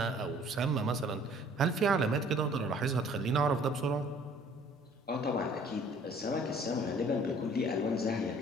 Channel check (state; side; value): normal; both; correlation 0.55